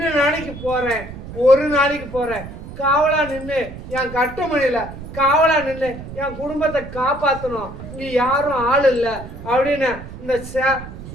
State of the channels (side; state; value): right; noise; rumble, 12 dB below the sound